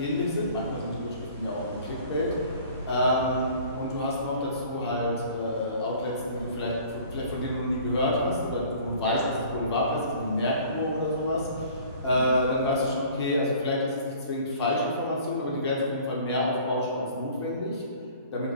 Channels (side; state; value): both; inverted; correlation -0.50